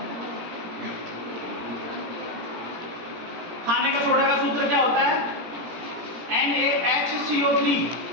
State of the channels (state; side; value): late; left; 17 ms